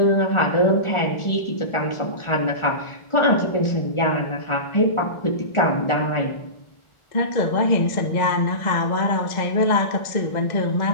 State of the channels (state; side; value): late; right; 1.4 ms